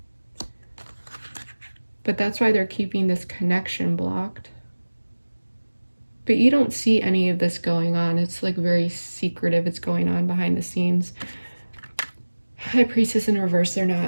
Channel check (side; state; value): both; inverted; correlation -1.00